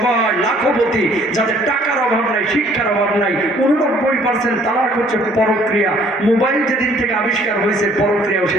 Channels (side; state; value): both; normal; correlation 0.59